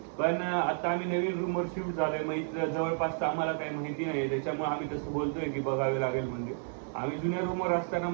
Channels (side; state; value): left; silent; 57 dB below the other